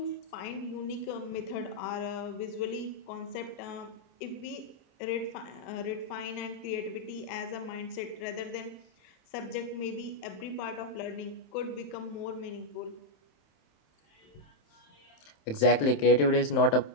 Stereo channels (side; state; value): right; late; 27 ms